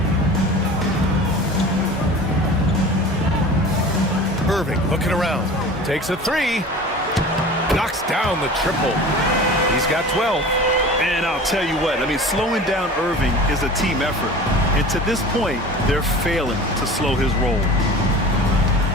Irving looking around. Takes a 3. Knocks down the triple. He's got 12. And I'll tell you what, slowing down Irving is a team effort. And to this point, they're failing to slow his roll.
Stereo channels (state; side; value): normal; both; correlation 0.38